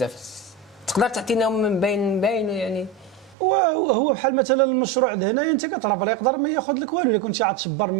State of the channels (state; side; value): drops out; left; at 3.4 s